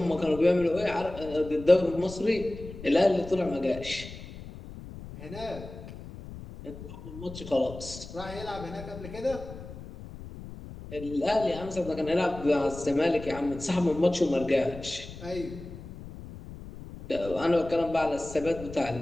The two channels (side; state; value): left; noise; rumble, 13 dB below the sound